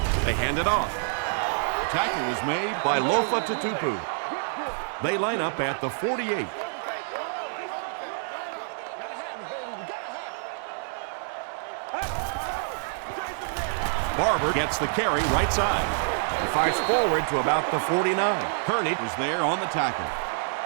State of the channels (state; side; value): silent; left; digital silence